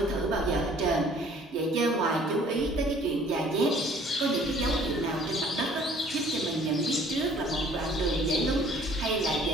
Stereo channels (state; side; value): normal; both; correlation 0.55